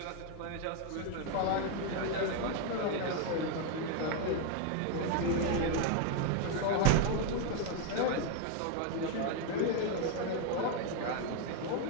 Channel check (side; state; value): both; different; correlation 0.00